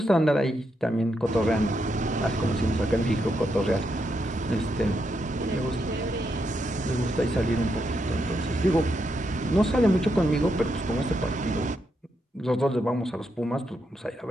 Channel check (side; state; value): both; normal; correlation 0.81